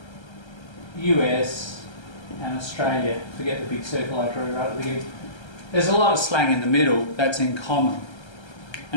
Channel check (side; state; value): right; late; 1.3 ms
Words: US, and Australia. Forget the big circle I drew right at the beginning. There's a lot of slang in the middle that's in common,